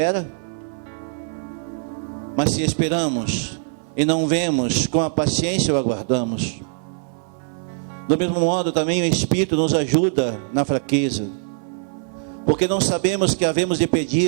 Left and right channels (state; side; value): silent; left; 61 dB below the other